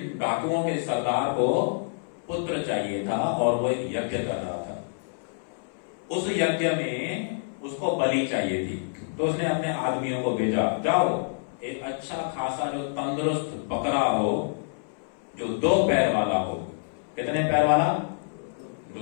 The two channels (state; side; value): silent; right; 60 dB below the other